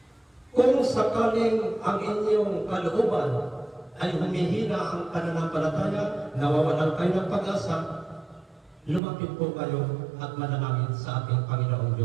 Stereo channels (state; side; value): drops out; left; at 9.0 s